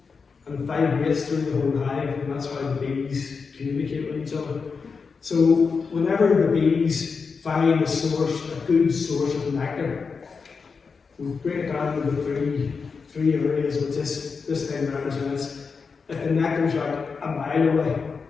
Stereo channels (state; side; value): quieter; right; 5.1 dB